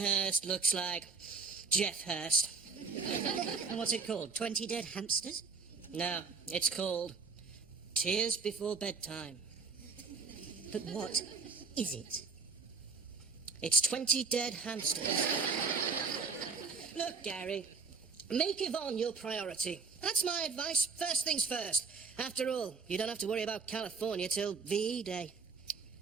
looks like Jeff Hirst. And what's it called? 20 Dead Hamsters? No, it's called Tears Before Bedtime. But what is it? It's 20 dead hamsters. Look, Gary, make Yvonne your priority. That's my advice. First things first. After all, you don't have to worry about California till VE Day.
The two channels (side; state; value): left; quieter; 4.8 dB